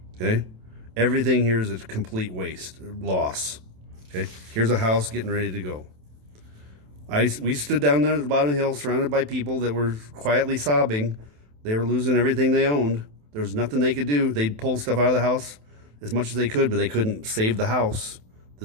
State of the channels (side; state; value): left; late; 27 ms